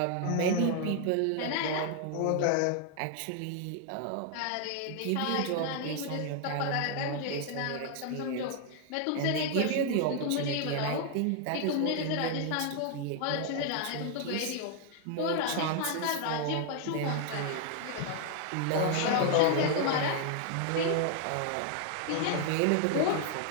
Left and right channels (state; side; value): different; both; correlation 0.00